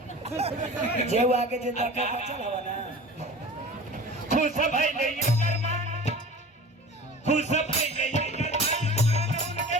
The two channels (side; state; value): both; normal; correlation 0.38